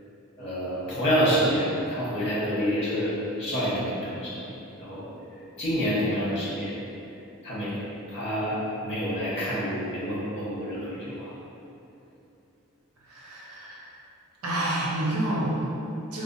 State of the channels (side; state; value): both; normal; correlation 0.37